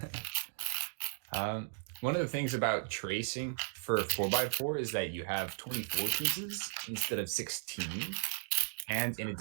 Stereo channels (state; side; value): silent; left; digital silence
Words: One of the things about tracing for 4x4 is that you have 24 pieces instead of 16. And in